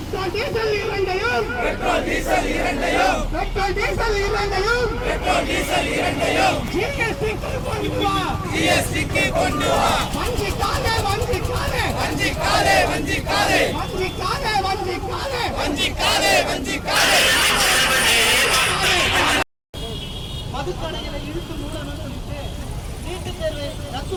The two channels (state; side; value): identical; both; correlation 1.00